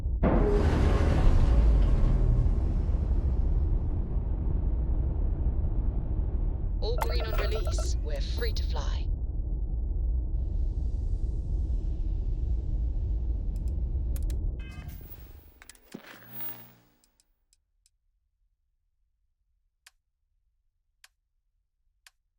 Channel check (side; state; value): both; identical; correlation 1.00